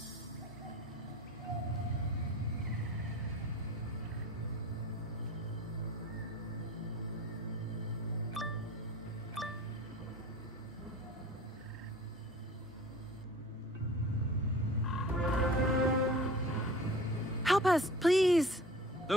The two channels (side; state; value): both; normal; correlation 0.41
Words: Help us, please.